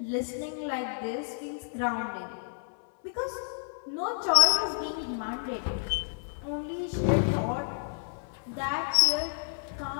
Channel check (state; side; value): silent; right; 58 dB below the other